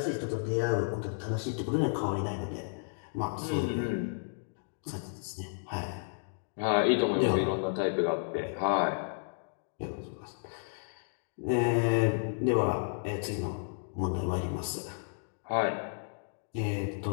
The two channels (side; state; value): right; silent; digital silence